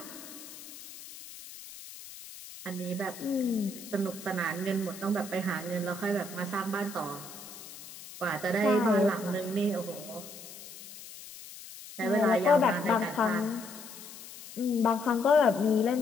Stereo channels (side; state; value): left; noise; hiss, 15 dB below the sound